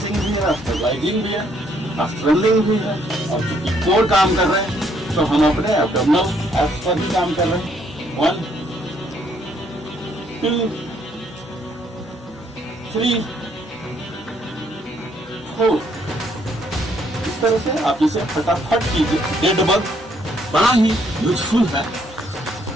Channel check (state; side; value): normal; both; correlation 0.69